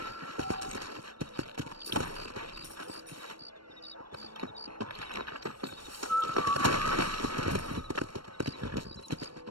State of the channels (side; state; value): left; late; 0.73 ms